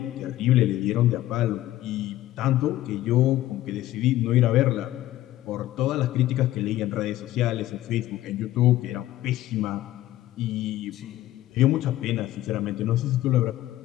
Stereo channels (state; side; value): quieter; right; 14.7 dB